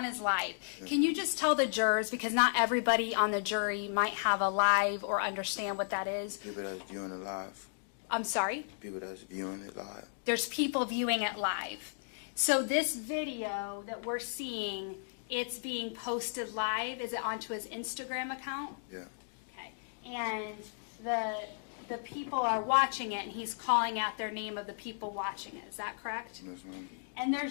his live. Can you just tell the jurors, because not everybody on the jury might have a live or understand what that is. People that's viewing it live. I'm sorry? People that's viewing it live. There's people viewing it live. So this video that we're seeing, it's being posted live. Is it onto his Instagram account? Yeah. Okay. And the people are watching it, and he's calling out their name of the people watching it. Is that correct? Yes, ma'am. And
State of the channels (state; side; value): silent; right; digital silence